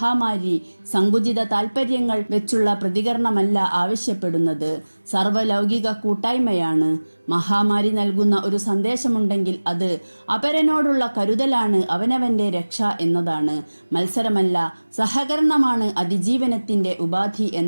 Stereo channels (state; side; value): inverted; both; correlation -1.00